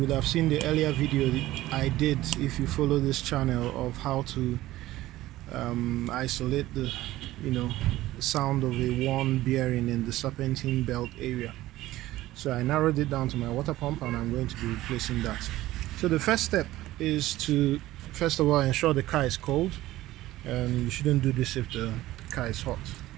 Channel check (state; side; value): quieter; left; 16.1 dB